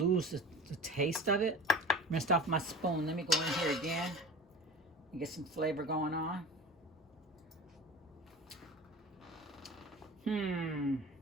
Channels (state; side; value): normal; both; correlation 0.36